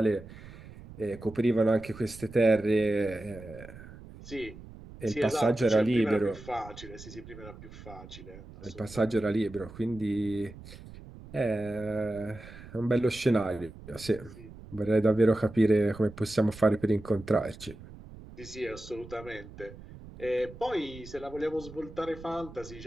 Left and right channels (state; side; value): noise; right; rumble, 17 dB below the sound